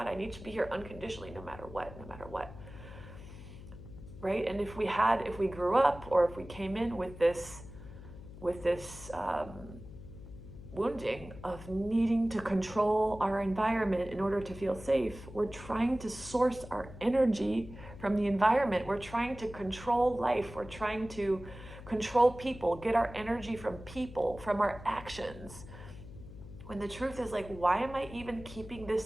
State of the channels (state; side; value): noise; left; hum, 15 dB below the sound